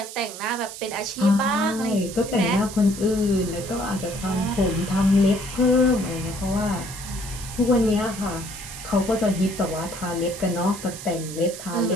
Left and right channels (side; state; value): right; noise; hiss, 12 dB below the sound